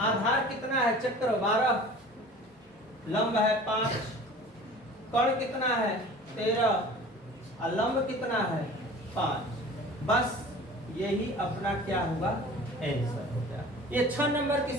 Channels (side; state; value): both; normal; correlation 0.43